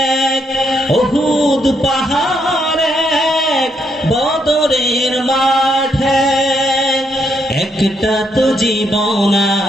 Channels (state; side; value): normal; both; correlation 0.76